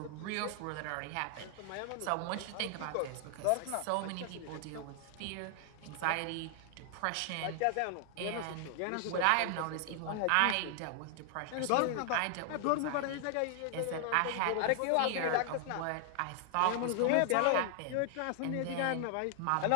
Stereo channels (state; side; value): different; both; correlation 0.00